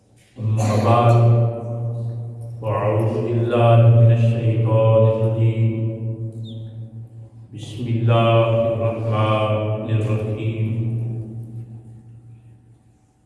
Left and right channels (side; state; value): both; identical; correlation 1.00